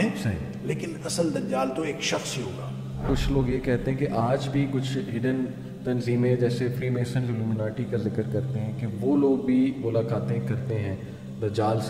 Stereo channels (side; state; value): both; identical; correlation 1.00